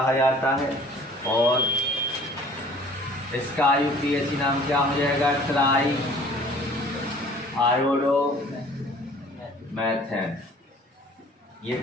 जाता है। और इसका IUPAC नाम क्या हो जाएगा? ट्राई आयोडोमेथेन। ये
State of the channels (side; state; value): both; normal; correlation 0.51